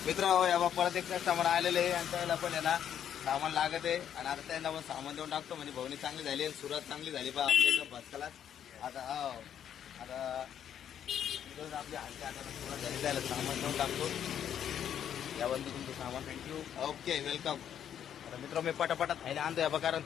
मित्र. या परत एक कस्टमर आलेले आहे आणि त्याला पण आहे ना सामान लागत आहे. आणि आता त्यांना पण सामान देऊन टाकतो म्हणजे भवनी चांगली झाली आणि सुरुवात चांगली झाली पहा आपल्या एकदम भस्कला. आता आता आपली हालची आता सुरुवात झाली त्याला सामान देऊन टाकतो. या बंधू तुमचं सामान. थँक्यू. Okay welcome. आता मित्र मी पटापटा थैल्या आणतोय बा, कारण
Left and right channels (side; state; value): right; quieter; 9.4 dB